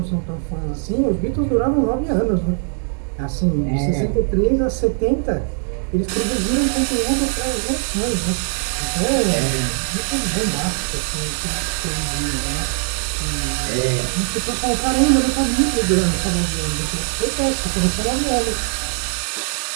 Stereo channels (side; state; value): left; silent; 58 dB below the other